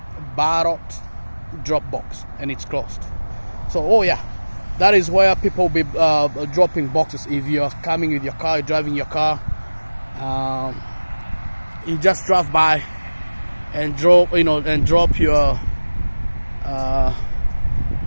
drop box, and it's closed. So oh yeah, that is where people will be dropping boxes. If you're coming with your car, driving your car, you just drive by and drop your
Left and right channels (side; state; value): both; inverted; correlation -1.00